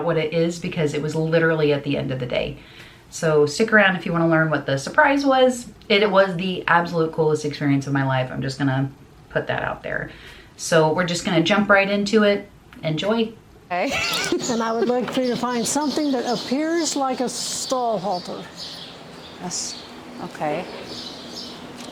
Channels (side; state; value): both; identical; correlation 1.00